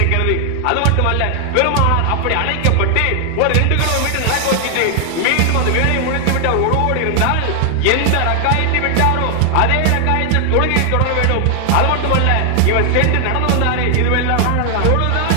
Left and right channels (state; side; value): different; both; correlation 0.00